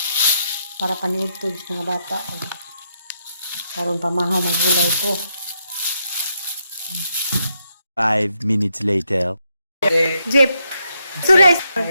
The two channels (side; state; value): both; inverted; correlation -0.79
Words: para paniudtod sa mga bata. Karon pamahaw magulay po. 5 minutes later. Jeep. Sures.